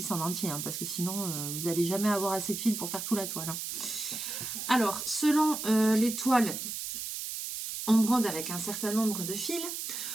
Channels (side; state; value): right; noise; hiss, 5 dB below the sound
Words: en entier, hein, parce que sinon, vous n'allez jamais avoir assez de fil pour faire toute la toile. Hein. Alors, selon les toiles, on brode avec un certain nombre de fils.